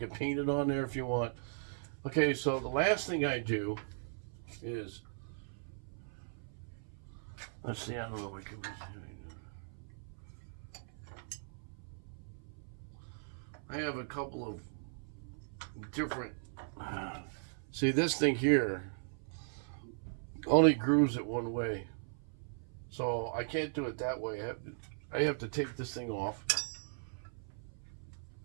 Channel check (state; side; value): silent; left; 52 dB below the other